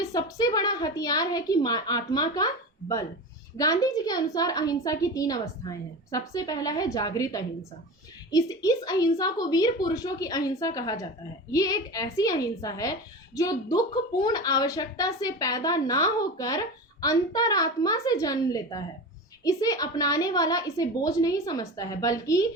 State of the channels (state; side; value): normal; both; correlation 0.28